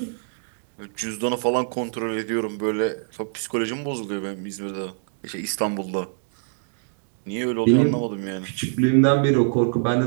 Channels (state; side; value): silent; left; 62 dB below the other